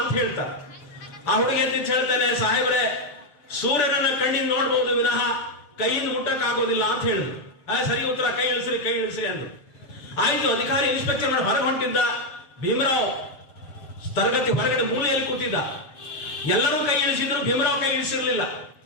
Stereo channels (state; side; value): late; right; 6.8 ms